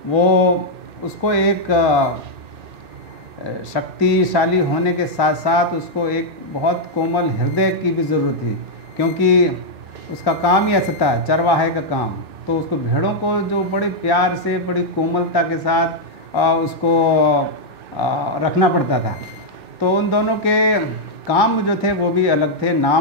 वो उसको एक शक्तिशाली होने के साथ साथ उसको एक बहुत कोमल हृदय की भी ज़रूरत थी, क्योंकि उसका काम ही ऐसा था, चरवाहे का काम। तो उसको भेड़ों को जो बड़े प्यार से बड़ी कोमलता के साथ उसको रखना पड़ता था। तो उन दोनों के काम जो थे वो भी अलग थे,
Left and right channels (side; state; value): left; late; 2.6 ms